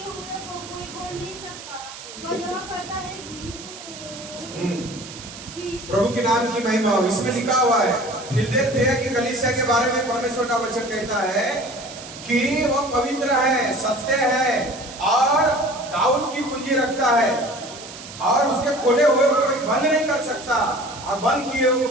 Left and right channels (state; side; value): noise; right; hiss, 14 dB below the sound